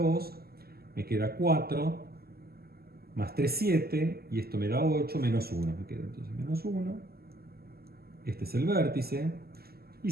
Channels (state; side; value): late; left; 0.45 ms